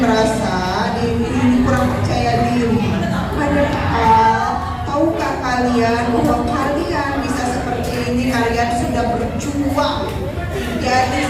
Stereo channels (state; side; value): identical; both; correlation 1.00